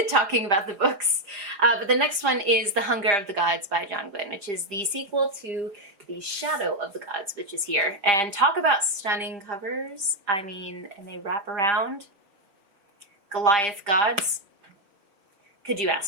talking about the books. But the next one is The Hunger of the Gods by John Gwynne, which is the sequel to The Shadow of the Gods, which is here. And talk about stunning covers. I mean, and they wrap around. Goliath gods. Could you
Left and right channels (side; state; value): left; late; 5.0 ms